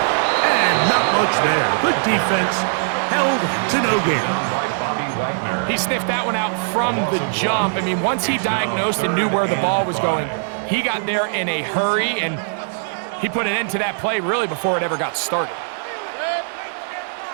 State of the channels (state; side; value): silent; left; 65 dB below the other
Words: And not much there. Good defense. Held to no gain. He sniffed that one out from the jump. I mean, once he diagnosed and knew where the ball was going, he got there in a hurry, and he put an end to that play really before it ever got started.